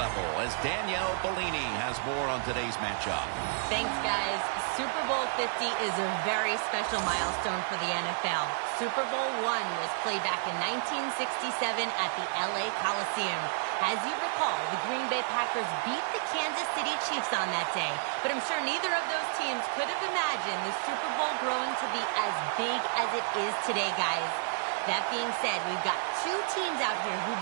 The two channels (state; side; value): silent; left; digital silence